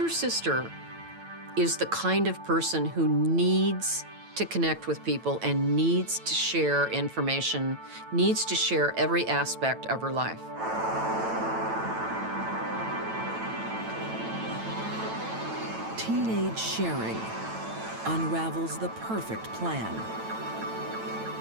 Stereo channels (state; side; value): late; left; 9.0 ms